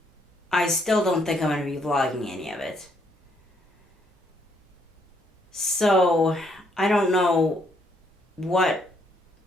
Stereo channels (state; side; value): normal; both; correlation 0.71